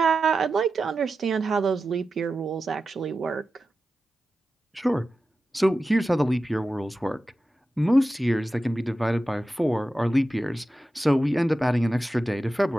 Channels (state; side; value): normal; both; correlation 0.92